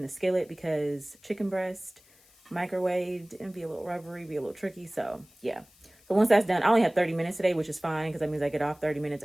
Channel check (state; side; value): noise; left; hiss, 29 dB below the sound